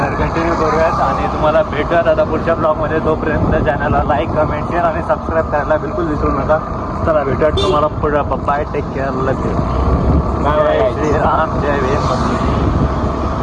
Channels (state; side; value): identical; both; correlation 1.00